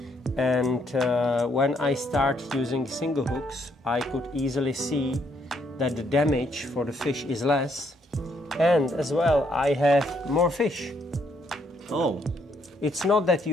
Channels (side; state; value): both; normal; correlation 0.72